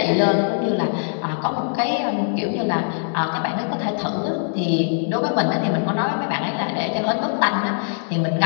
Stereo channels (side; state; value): right; silent; digital silence